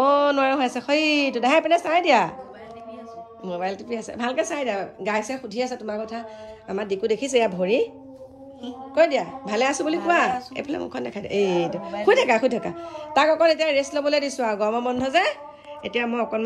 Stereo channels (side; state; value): both; identical; correlation 1.00